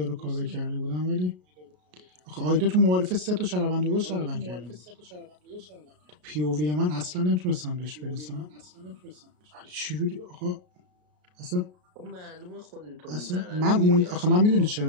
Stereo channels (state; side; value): late; left; 33 ms